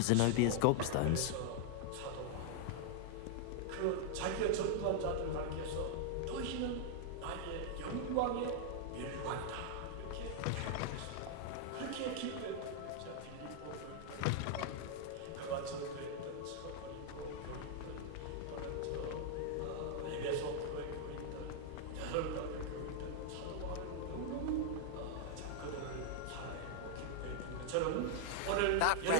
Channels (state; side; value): different; both; correlation -0.01